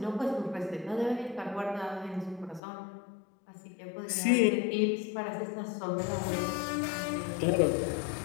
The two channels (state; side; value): drops out; right; at 2.6 s